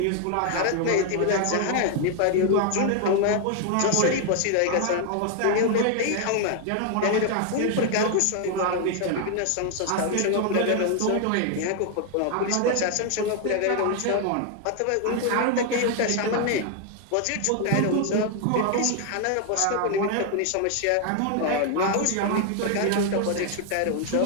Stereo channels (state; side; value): different; both; correlation 0.00